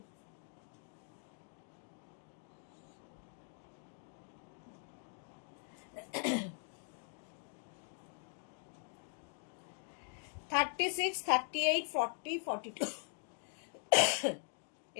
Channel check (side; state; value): right; silent; 50 dB below the other